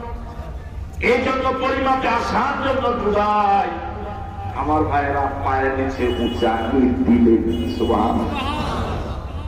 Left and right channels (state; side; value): identical; both; correlation 1.00